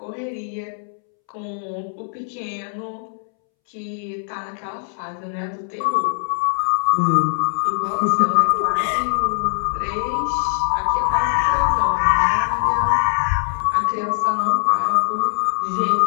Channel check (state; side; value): silent; right; 65 dB below the other